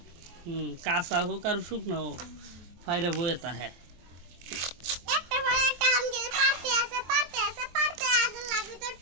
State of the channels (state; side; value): late; left; 23 ms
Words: কাঁচা হোক আর শুকনো হোক ফাইরে বইতা হ্যাঁ